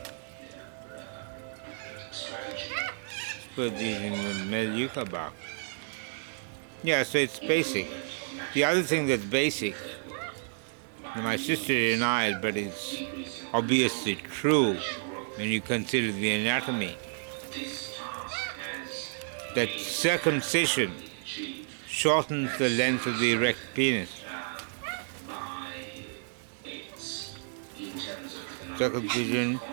Put these in the Moorooka bark. Yeah, so it's basic. The other thing that's basic, my sister denied, but it's obviously true when you consider the anatomy, that circumcision shortens the length of the erect penis. Circumcision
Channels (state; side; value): silent; left; 57 dB below the other